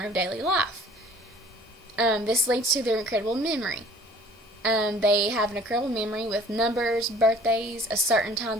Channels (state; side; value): normal; both; correlation 0.51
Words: of daily life. This leads to their incredible memory. They have an incredible memory with numbers, birthdays, a certain time